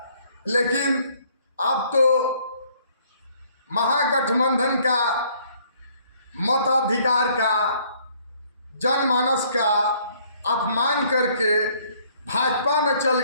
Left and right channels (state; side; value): inverted; both; correlation -0.62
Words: लेकिन अब तो महागठबंधन का मताधिकार का, जनमानस का अपमान करके भाजपा में चल